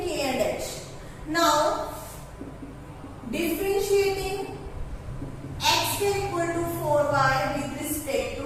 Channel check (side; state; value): both; identical; correlation 1.00